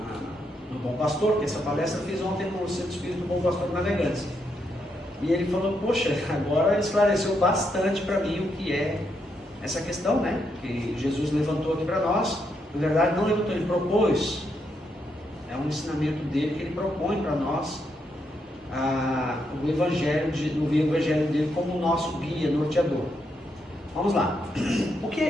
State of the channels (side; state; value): both; normal; correlation 0.79